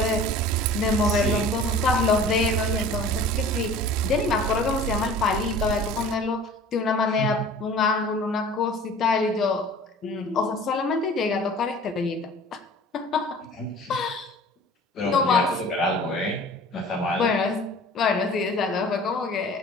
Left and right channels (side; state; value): both; normal; correlation 0.44